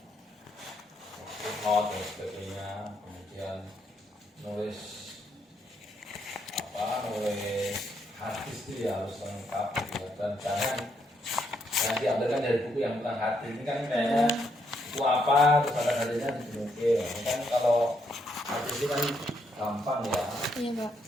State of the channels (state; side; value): normal; both; correlation 0.75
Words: Footnote dan sebagainya, kemudian nulis hadis itu ya harus lengkap gitu. Dan jangan diambilkan dari buku yang bukan hadis. Ini kan kayaknya buku apa terus ada hadisnya dimungkin. Kan kalau hadis ini kan gampang ya. Iya, Pak.